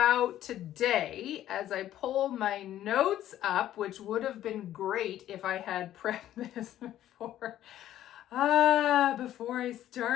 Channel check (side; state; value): right; quieter; 12.5 dB